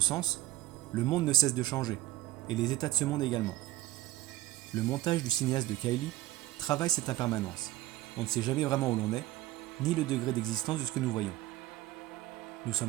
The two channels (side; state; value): left; quieter; 15.9 dB